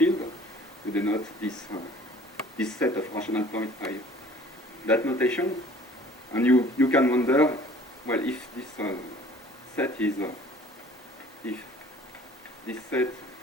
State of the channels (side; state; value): both; normal; correlation 0.51